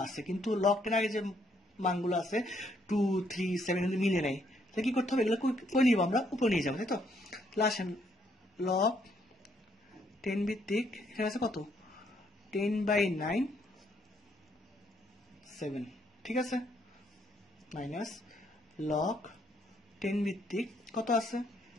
আছে, কিন্তু লগ 10 আগে যে মানগুলো আছে 2, 3, 7 কিন্তু মিলে নেই। তাহলে কি করতে হবে? এগুলো কই নিব? আমরা উপরে নিয়ে যাবো, তাই তো? তাহলে আসেন, লগ 10 ভিত্তিক এখানে আছে কত? 10/9 7, ঠিক আছে? মাইনাস লগ 10 ভিত্তিক কত আছে?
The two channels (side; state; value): both; normal; correlation 0.71